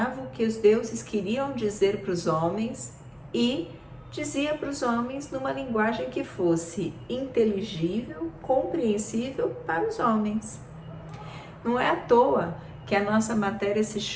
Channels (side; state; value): both; identical; correlation 1.00